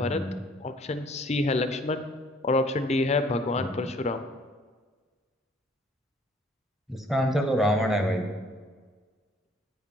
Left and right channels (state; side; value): normal; both; correlation 0.59